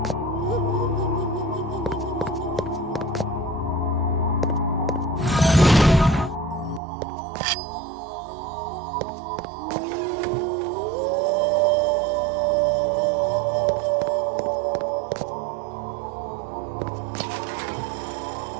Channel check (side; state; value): left; drops out; at 6.8 s